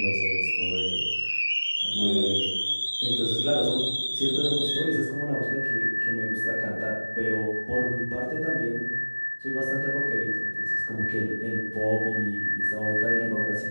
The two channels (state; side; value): inverted; both; correlation -1.00